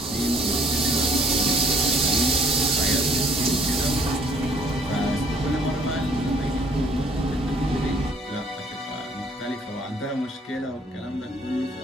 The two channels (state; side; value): normal; both; correlation 0.61